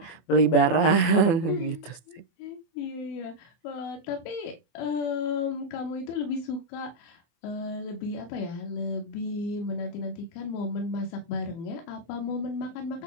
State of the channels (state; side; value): late; right; 24 ms